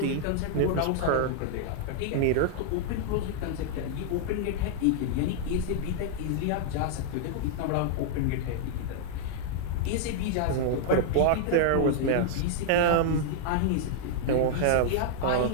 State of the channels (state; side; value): different; both; correlation -0.01